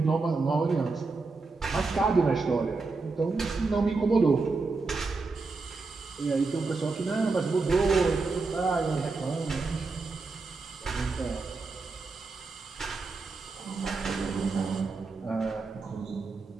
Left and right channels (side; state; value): left; quieter; 3.9 dB